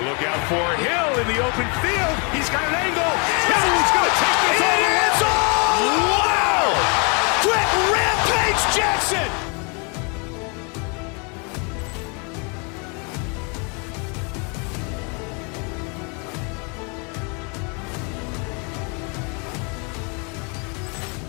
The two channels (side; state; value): right; quieter; 34.2 dB